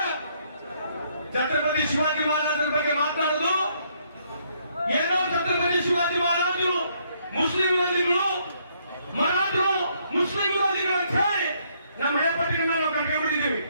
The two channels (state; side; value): inverted; both; correlation -0.70